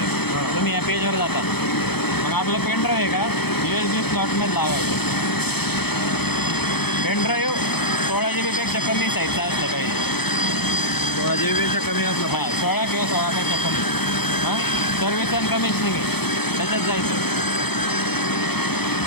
तुम्ही या पेजवर जाता. मग आपलं पेनड्राईव्ह आहे का USB स्लॉटमध्ये लावायचं. पेनड्राईव्ह 16 GB पेक्षा कमी साईजचा असलं पाहिजे. 16 GB पेक्षा कमी असलं हां पाहिजे. 16 किंवा 16पेक्षा कमी. हां सर्व्हिस अँड कमिशनिंग आहे त्याच्यात जायचं.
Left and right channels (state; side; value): late; right; 0.98 ms